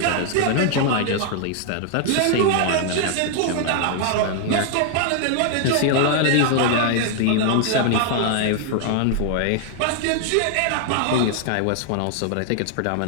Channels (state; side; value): different; both; correlation 0.00